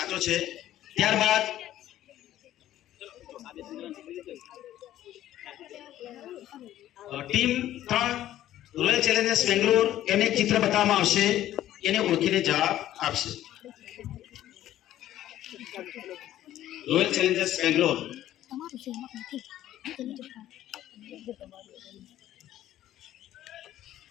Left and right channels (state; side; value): quieter; right; 13.0 dB